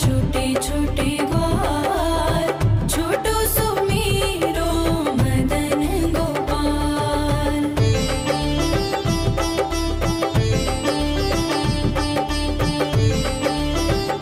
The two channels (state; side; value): identical; both; correlation 1.00